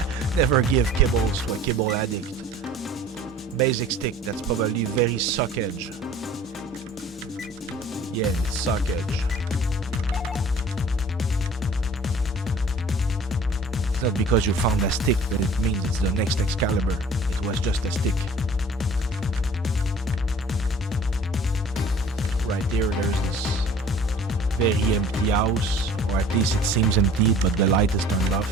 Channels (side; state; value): both; normal; correlation 0.48